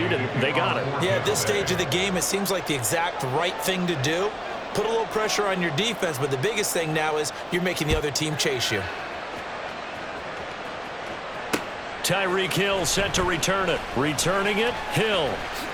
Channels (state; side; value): identical; both; correlation 1.00